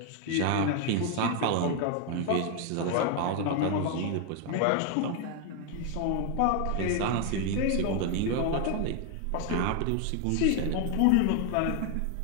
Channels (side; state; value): both; different; correlation 0.01